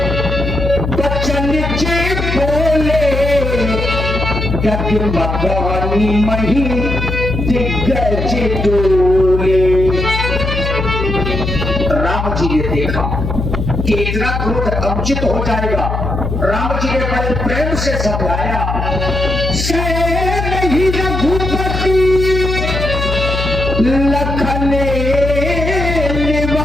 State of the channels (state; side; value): noise; left; hum, 2 dB below the sound